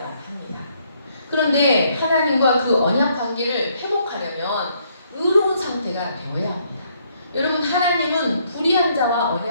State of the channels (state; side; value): inverted; both; correlation -0.69